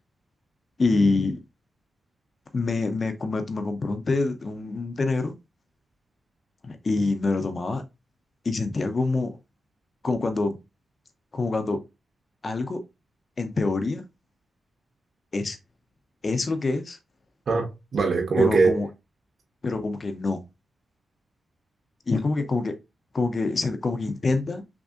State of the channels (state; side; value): normal; both; correlation 0.89